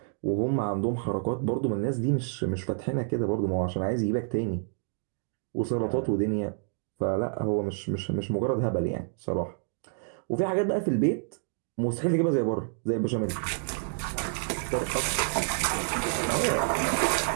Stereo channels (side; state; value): left; silent; 59 dB below the other